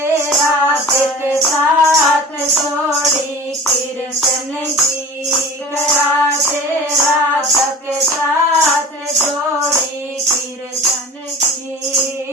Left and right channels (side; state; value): both; normal; correlation 0.38